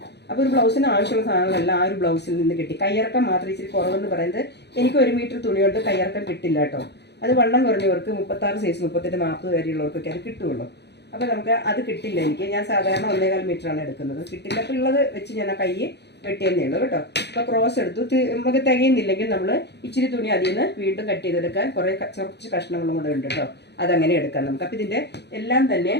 അപ്പോൾ ഒരു ബ്ലൗസിന് ആവശ്യമുള്ള സാധനങ്ങളെല്ലാം ആ ഒരു ബ്ലൗസിൽ നിന്ന് കിട്ടി. കയ്യിറക്കം മാത്രം ഇച്ചിരി കുറവെന്ന് പറയുന്നത്, എനിക്ക് 1 മീറ്റർ തുണി കൊണ്ട് കയ്യിറക്കം കിട്ടില്ല കേട്ടോ. അത് വണ്ണം കുറഞ്ഞവർക്ക് 36 സൈസ് 38 40 വരെയുള്ളവർക്കൊക്കെ അത് കിട്ടുള്ളൂ. അപ്പോൾ നമുക്ക് അത് കിട്ടില്ല. ഞാൻ സാധാരണ 1.25 മീറ്ററാണ് എടുക്കുന്നത്. കിട്ടില്ല. അപ്പോൾ ഉള്ളത് വെച്ച് ഞാൻ ആ കൈ വെട്ടിയെന്നേ ഉള്ളൂ കേട്ടോ. അപ്പോൾ ക്രോസ് എടുത്തു. നമുക്ക് തികയുന്നില്ലെങ്കിൽ നമ്മൾ ഇച്ചിരി തുണി അതിൽ നിന്ന് വീണ്ടും കട്ട് ചെയ്തെടുക്കാൻ കുറച്ച് കഷ്ണങ്ങളും കൂടെ ഉണ്ട് കേട്ടോ. അതങ്ങനെ എടുക്കാം നമുക്ക്. അപ്പോൾ ഇതിൻ്റെ എല്ലാം തന്നെ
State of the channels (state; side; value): late; right; 0.49 ms